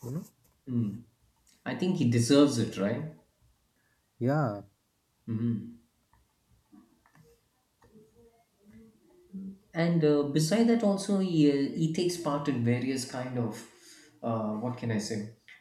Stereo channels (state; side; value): identical; both; correlation 1.00